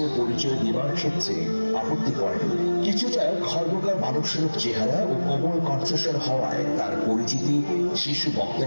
পরিচয় দেওয়ার ক্ষেত্রে আপত্তি করেন। কিছুটা খর্বকার মানবস্বরূপ চেহারা ও কোমল কণ্ঠস্বর হওয়ায় তার পরিচিতি শিশু বক্তা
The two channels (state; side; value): inverted; both; correlation -1.00